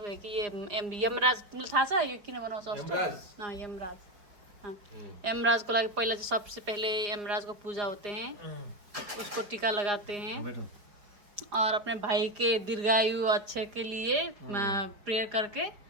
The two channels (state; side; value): late; left; 5.1 ms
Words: है कि ये यमराज था सा ये किन बनाओ अष्ट। हाँ, यमराज। हाँ, यमराज को लाके पहले सबसे पहले यमराज को पूजा होते हैं, उसको टीका लगाते हैं और अपने भाई के दीर्घायु अच्छे के लिए प्रेयर करके